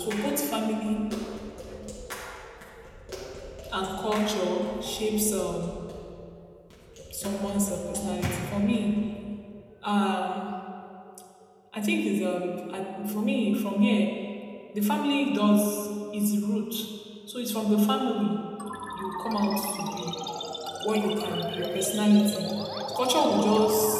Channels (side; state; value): both; identical; correlation 1.00